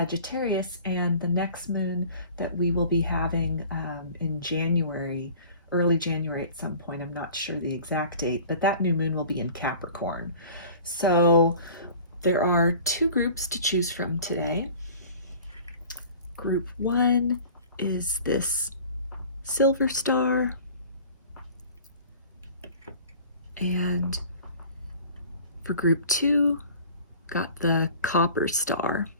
and the next moon that we will be having in January, early January at some point. I'm not sure the exact date, but that new moon will be in Capricorn. So there are two groups to choose from today. Group 1 is this silver star, and for group 2, got the copper star.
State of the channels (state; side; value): inverted; both; correlation -0.45